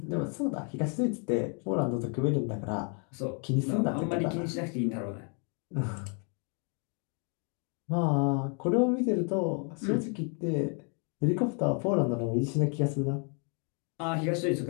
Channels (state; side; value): quieter; right; 39.3 dB